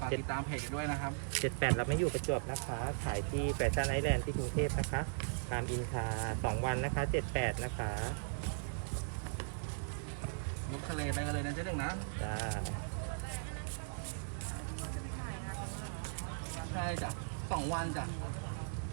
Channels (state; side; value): silent; left; digital silence